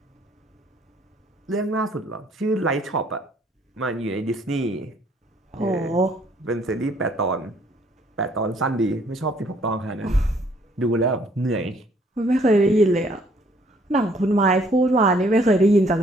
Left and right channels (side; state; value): both; normal; correlation 0.63